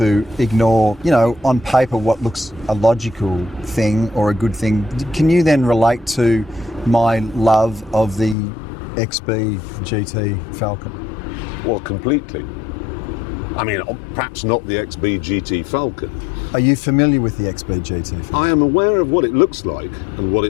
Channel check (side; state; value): right; drops out; at 8.3 s